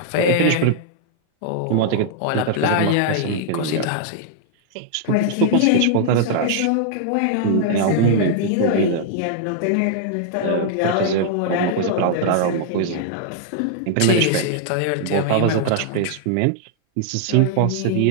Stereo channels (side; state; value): both; different; correlation -0.01